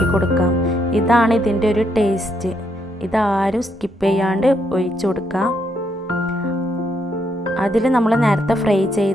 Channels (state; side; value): normal; both; correlation 0.76